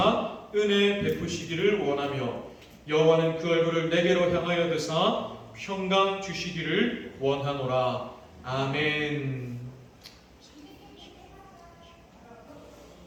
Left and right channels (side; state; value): both; identical; correlation 1.00